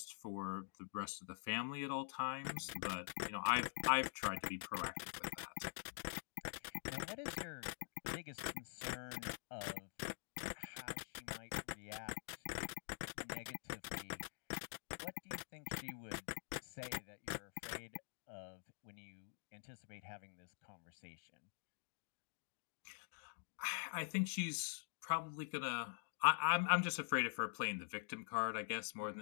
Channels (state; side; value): silent; right; digital silence